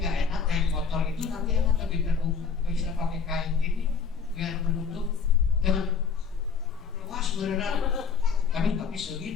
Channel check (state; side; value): quieter; right; 5.9 dB